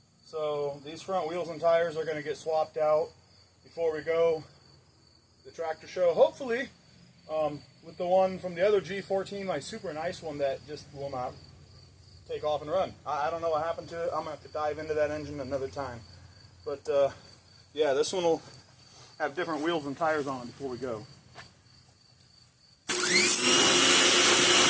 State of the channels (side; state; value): both; identical; correlation 1.00